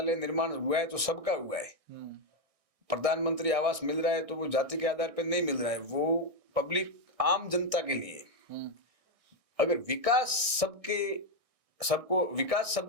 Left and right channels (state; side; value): late; left; 1.6 ms